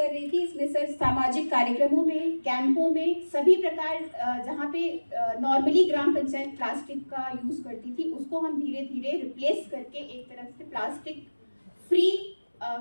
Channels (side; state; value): both; inverted; correlation -1.00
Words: रही थी, इसमें सर सामाजिक कार्यक्रमों में, कैंपों में, सभी प्रकार जहाँ पे नॉर्मली ग्राम पंचायत प्लास्टिक का यूज करती थी, उसको हम धीरे धीरे रिप्लेस करके एक तरफ से प्लास्टिक फ्री